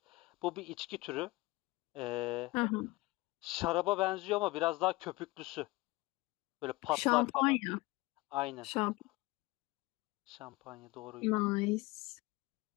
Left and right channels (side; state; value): right; quieter; 21.5 dB